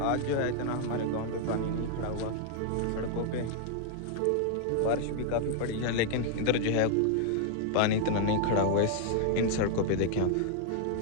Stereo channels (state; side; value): different; both; correlation 0.00